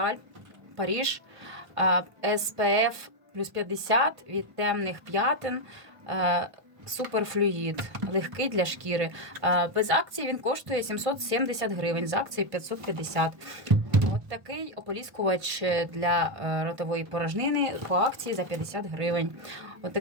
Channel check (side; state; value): left; late; 1.5 ms